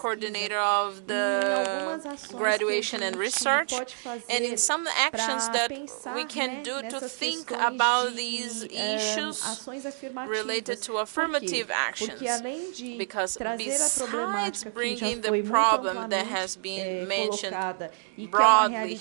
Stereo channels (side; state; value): left; silent; 59 dB below the other